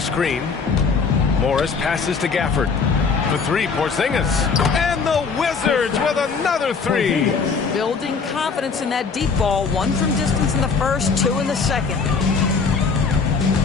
Morris passes to Gafford. For 3, Porzingis. And the Wizards with another 3. Building confidence in that deep ball. 1 from distance in the first, 2 in the second.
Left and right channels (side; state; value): right; quieter; 5.1 dB